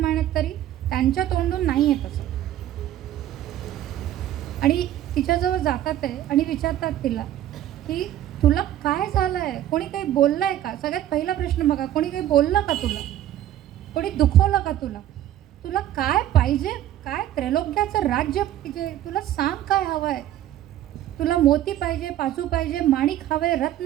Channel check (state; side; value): quieter; left; 12.4 dB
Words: तरी त्यांच्या तोंडून नाही आहे तसं. आणि तिच्याजवळ जातात आहे आणि विचारतात तिला की तुला काय झालं आहे, कोणी काही बोललं आहे का. सगळ्यात पहिला प्रश्न बघा, कोणी काही बोललं का तुला, कोणी दुखवलं का तुला, तुला काय पाहिजे, काय त्रैलोक्याचं राज्य पाहिजे, तुला सांग काय हवं आहे. तुला मोती पाहिजे, पाचू पाहिजे, माणिक हवे, रत्न